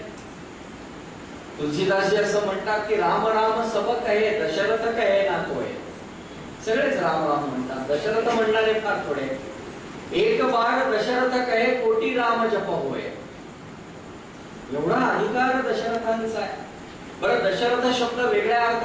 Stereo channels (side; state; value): both; identical; correlation 1.00